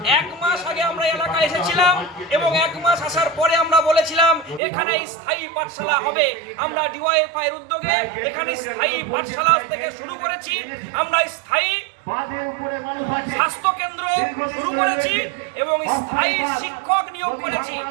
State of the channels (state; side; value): drops out; left; at 4.6 s